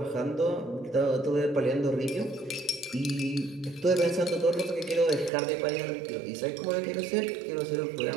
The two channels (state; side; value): drops out; left; at 5.3 s